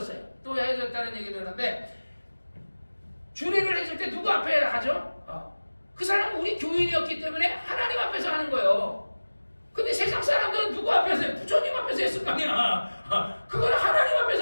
또 헤어졌다는 얘기 들었는데 주례를 해줄 때 누구 앞에 하죠? 그 사람은 우리 교인이었기 때문에 하나님 앞에서 하는 거예요. 근데 세상 사람들은 누구 앞에서 해요? 부처님 앞에서 했을 거 아니야. 그걸 하나님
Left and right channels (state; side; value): inverted; both; correlation -1.00